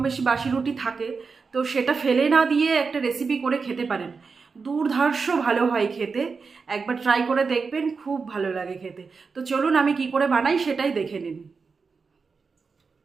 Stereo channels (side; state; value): left; quieter; 4.9 dB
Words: বেশি বাসি রুটি থাকে, তো সেটা ফেলে না দিয়ে একটা রেসিপি করে খেতে পারেন। দুর্ধর্ষ ভালো হয় খেতে, একবার ট্রাই করে দেখবেন, খুব ভালো লাগে খেতে। তো চলুন আমি কি করে বানাই সেটাই দেখে নিন।